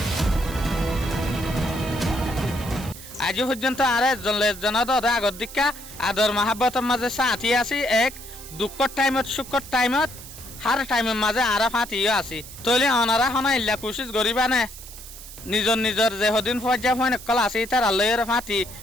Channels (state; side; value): noise; right; hiss, 15 dB below the sound